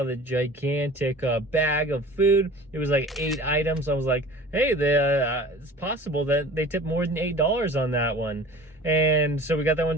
the gigantic bag of food. It was like 8 items. I was like, hey, it's possible that they tipped more than $8 on that one. And so we got that one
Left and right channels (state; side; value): normal; both; correlation 0.42